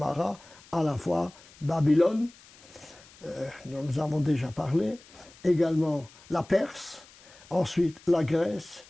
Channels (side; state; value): left; noise; hiss, 24 dB below the sound